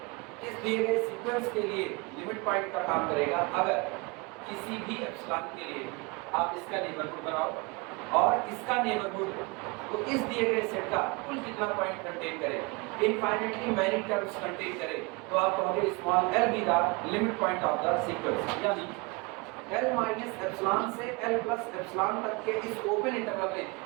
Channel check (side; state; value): left; quieter; 27.7 dB